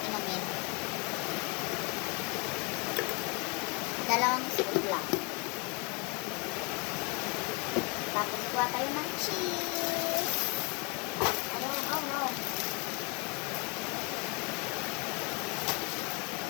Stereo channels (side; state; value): right; quieter; 29.9 dB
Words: inumin. Dalawang scoop lang. Tapos kuha tayo ng cheese. Ayan, oh no.